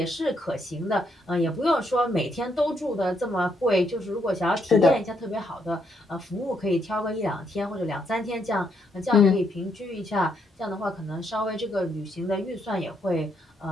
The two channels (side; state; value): both; normal; correlation 0.75